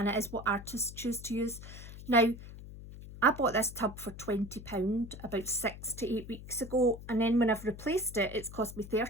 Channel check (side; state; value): left; noise; hum, 14 dB below the sound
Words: it is what artists choose to use. Now, I bought this tub for £20 about 6 to 8 weeks ago, and then when I've replaced it, it's cost me